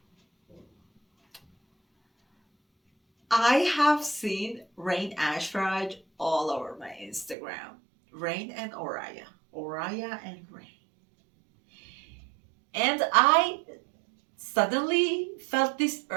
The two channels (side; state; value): left; drops out; at 7.4 s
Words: I have seen Rain Ashraj all over my Instagram. Rain and Oraya. Oraya and Rain. And I suddenly felt this